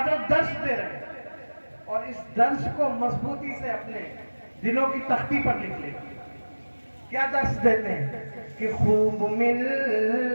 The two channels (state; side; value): inverted; both; correlation -1.00